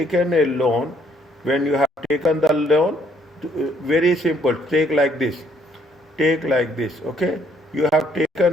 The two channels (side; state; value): both; normal; correlation 0.66